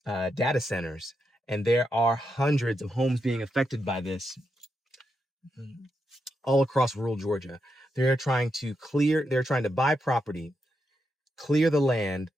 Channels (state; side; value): normal; both; correlation 0.84